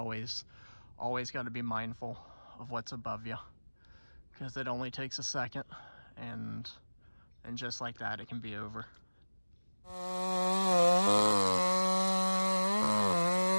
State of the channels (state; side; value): inverted; both; correlation -1.00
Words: got to be mindful of what's above you, because it only takes a second, and just like that it can be over.